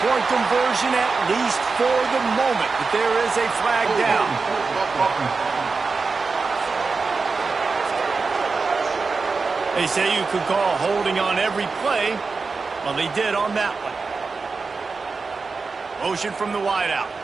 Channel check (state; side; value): quieter; left; 4.4 dB